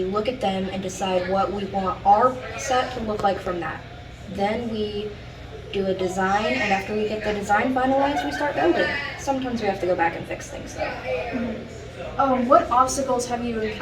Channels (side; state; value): both; identical; correlation 1.00